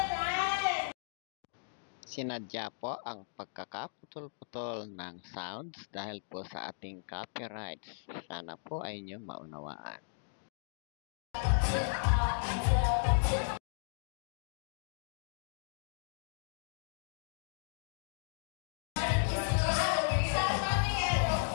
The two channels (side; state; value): right; silent; digital silence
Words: Sinadya po ang pagkakaputol-putol ng sounds dahil po sa ating copyrights. Sana po ay inyo maunawaan.